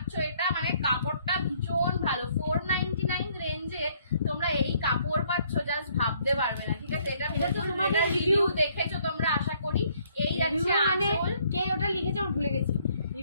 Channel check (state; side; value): inverted; both; correlation -0.65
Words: এটা, মানে কাপড়টা ভীষণ ভালো। 499 রেঞ্জে তোমরা এই কাপড় পাচ্ছ, জাস্ট ভাবতে পারবে না, ঠিক আছে। এটা তোমাদের রিভিউ দেখেছো তোমরা আশা করি। এই যাচ্ছে মানে আঁচল, কে ওটা লিখেছে আমি ভুলে গেছি,